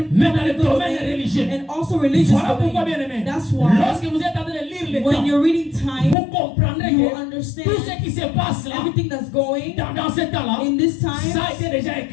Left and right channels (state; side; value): drops out; right; at 6.2 s